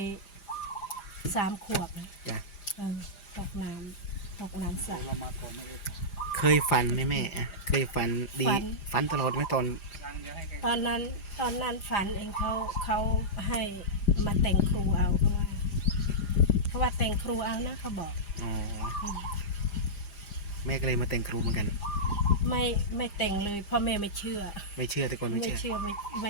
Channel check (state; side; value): late; right; 5.0 ms